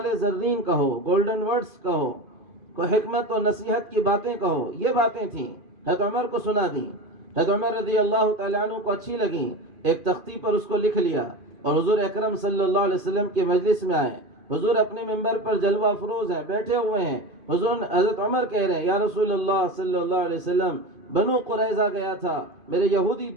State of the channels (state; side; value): late; left; 2.5 ms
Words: زرین کہو، گولڈن ورڈز کہو، کوئی حکمت و نصیحت کی باتیں کہو، یہ باتیں تھیں، حضرت عمر کو سنا دیں۔ حضرت عمر رضی اللہ تعالیٰ عنہ کو اچھی لگیں، ایک تختی پر اس کو لکھ لیا اور حضور اکرم صلی اللہ علیہ وسلم کے مجلس میں آئے۔ حضور اپنے منبر پر جلوہ افروز ہیں، بیٹھے ہوئے ہیں۔ حضرت عمر کہہ رہے ہیں یا رسول اللہ صلی اللہ علیہ وسلم، بنو قریظہ گیا تھا، میرے یہودی